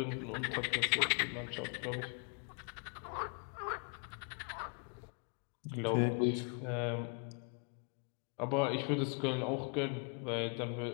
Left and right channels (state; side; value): quieter; right; 38.4 dB